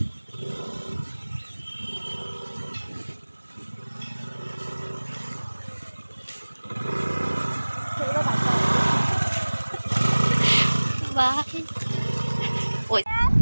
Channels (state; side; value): inverted; both; correlation -1.00